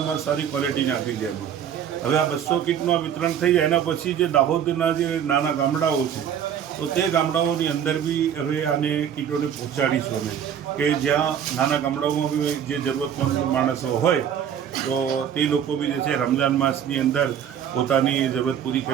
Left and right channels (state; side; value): quieter; left; 8.9 dB